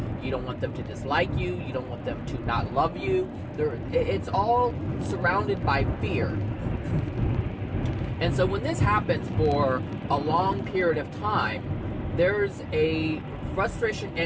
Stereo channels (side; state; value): both; identical; correlation 1.00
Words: You don't want them to dislike you. You don't want them to not love you. It's all surrounded by fear. And so when this happens for a long period of time, there's a frustration